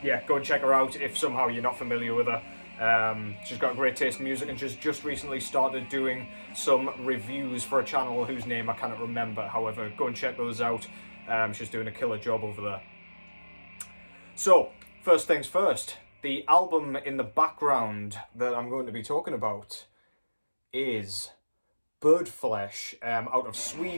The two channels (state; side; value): inverted; both; correlation -1.00